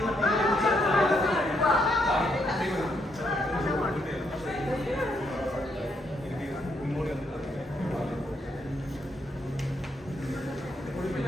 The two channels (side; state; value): both; normal; correlation 0.76